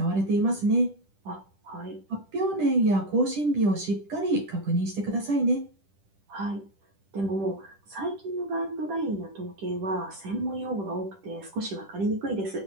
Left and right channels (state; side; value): late; left; 10 ms